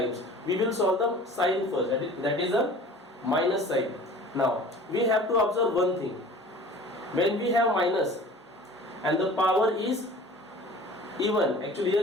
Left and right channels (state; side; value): normal; both; correlation 0.44